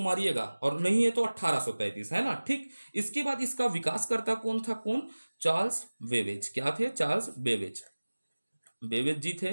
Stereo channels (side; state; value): both; inverted; correlation -1.00